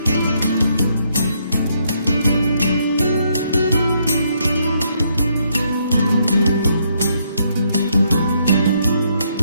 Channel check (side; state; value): both; inverted; correlation -0.73